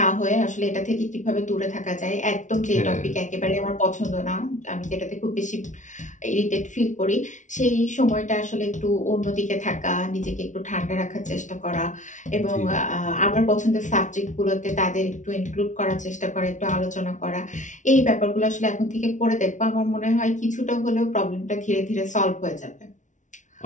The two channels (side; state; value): right; late; 0.36 ms